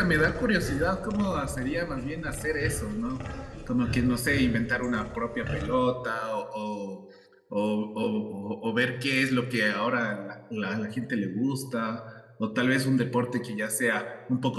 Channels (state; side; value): identical; both; correlation 1.00